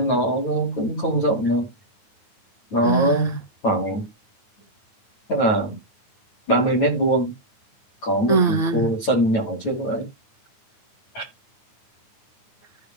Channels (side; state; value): right; late; 9.2 ms